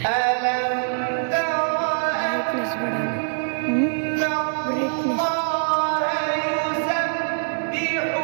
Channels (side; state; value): left; silent; 63 dB below the other